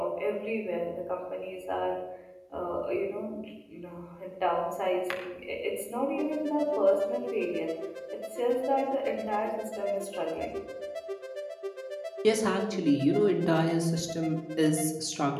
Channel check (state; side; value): identical; both; correlation 1.00